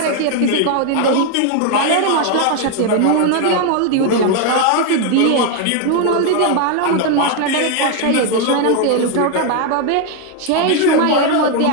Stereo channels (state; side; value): different; both; correlation 0.01